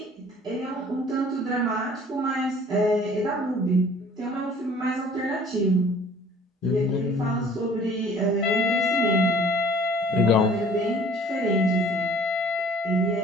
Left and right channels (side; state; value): both; normal; correlation 0.52